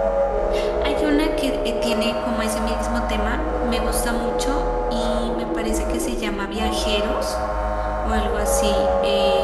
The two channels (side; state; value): both; identical; correlation 1.00